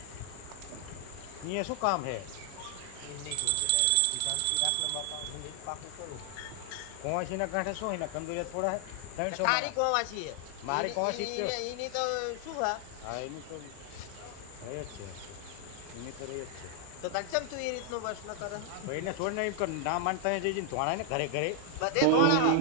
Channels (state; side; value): different; both; correlation 0.00